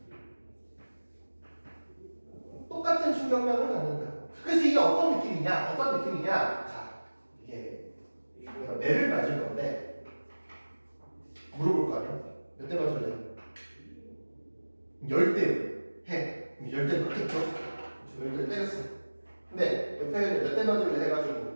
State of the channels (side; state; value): both; inverted; correlation -1.00